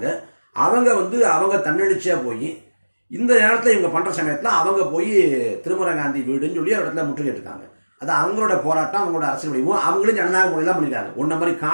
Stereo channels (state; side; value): inverted; both; correlation -1.00